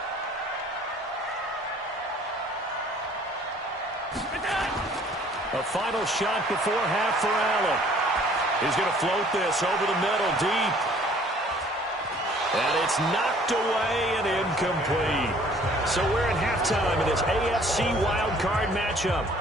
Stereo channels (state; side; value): normal; both; correlation 0.56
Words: A final shot before half for Allen. He's going to float this over the middle deep. And it's knocked away and incomplete. So we're in halftime in this AFC wildcard matchup.